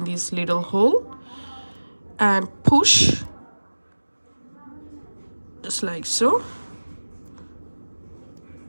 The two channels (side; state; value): both; inverted; correlation -1.00